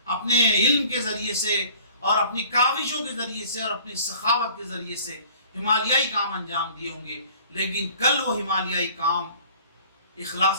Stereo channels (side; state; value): both; inverted; correlation -0.50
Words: اپنے علم کے ذریعے سے اور اپنی کاوشوں کے ذریعے سے اور اپنی سخاوت کے ذریعے سے ہمالیائی کام انجام دیے ہوں گے، لیکن کل وہ ہمالیائی کام